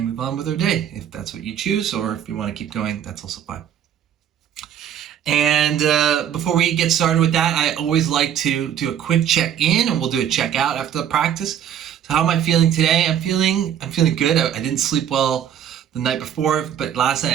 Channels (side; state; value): left; quieter; 9.7 dB